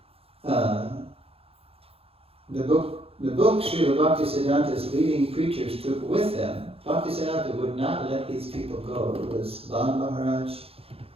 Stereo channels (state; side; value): late; left; 0.28 ms